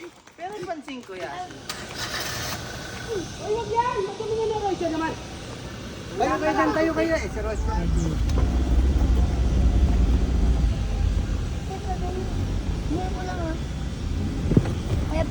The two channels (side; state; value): both; identical; correlation 1.00